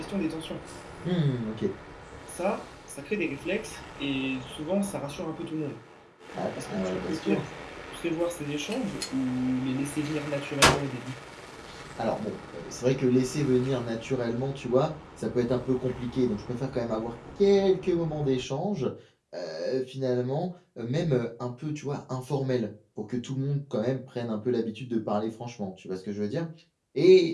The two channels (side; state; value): both; identical; correlation 1.00